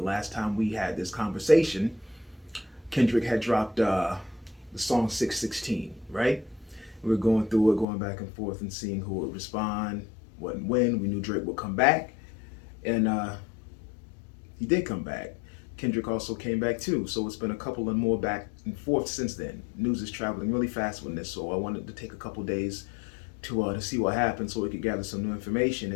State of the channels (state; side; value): drops out; right; at 7.9 s